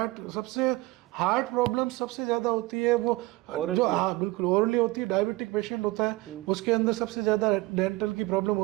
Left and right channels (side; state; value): left; quieter; 20.6 dB